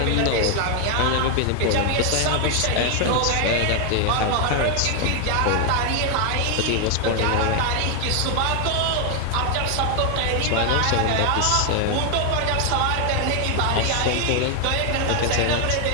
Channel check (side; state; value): both; different; correlation 0.00